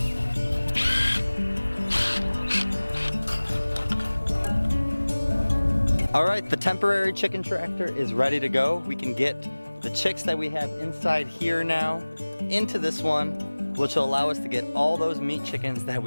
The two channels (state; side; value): inverted; both; correlation -1.00